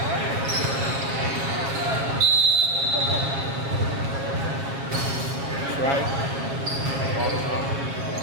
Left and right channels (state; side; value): late; left; 7.3 ms